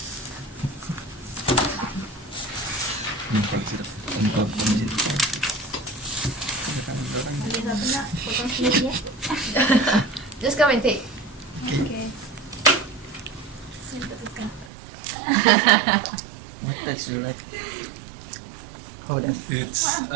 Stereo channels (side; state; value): left; drops out; at 14.7 s